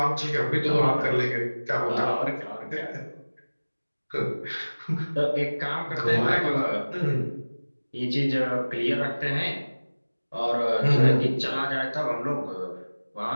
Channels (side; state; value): both; inverted; correlation -1.00